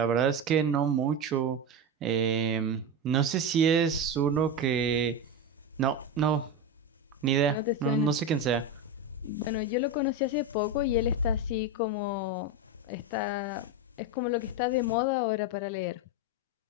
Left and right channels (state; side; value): normal; both; correlation 0.16